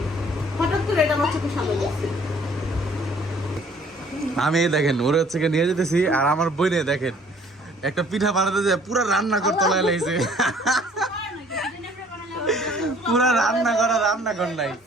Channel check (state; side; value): normal; both; correlation 0.57